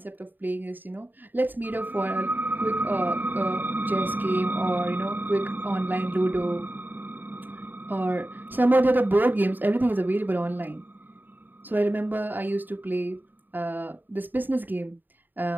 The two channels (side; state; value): left; late; 0.090 ms